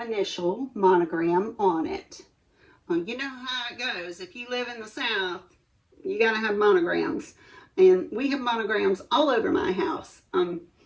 monogram on it. You know how it goes. If you live in the South, you got to have monograms. And we have monograms all over my house.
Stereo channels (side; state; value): both; identical; correlation 1.00